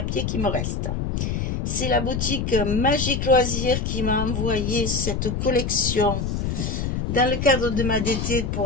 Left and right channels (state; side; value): noise; left; rumble, 1 dB below the sound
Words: qui me reste. C'est la boutique Magic Loisirs qui m'a envoyé cette collection dans le cadre de ma DT